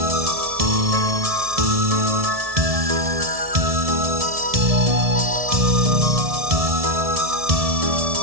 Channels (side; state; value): left; late; 1.7 ms